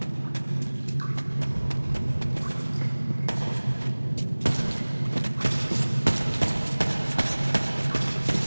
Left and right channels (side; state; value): both; inverted; correlation -1.00